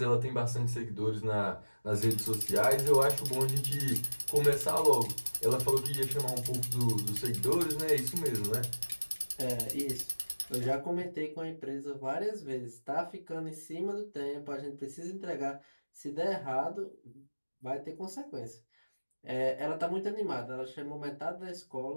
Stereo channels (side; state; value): both; inverted; correlation -1.00